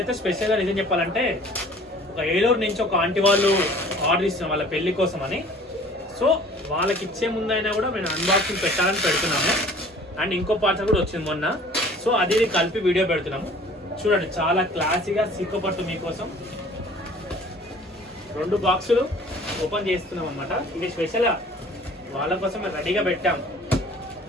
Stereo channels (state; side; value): normal; both; correlation 0.50